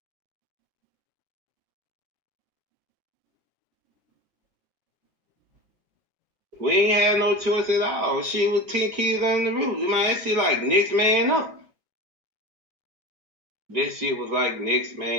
We ain't had no choice at all. She was 10 kids on the roof. Man, that shit like next man up. That shit was like next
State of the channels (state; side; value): normal; both; correlation 0.30